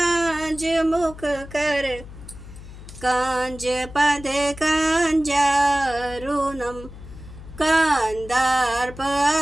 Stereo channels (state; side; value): noise; left; hum, 15 dB below the sound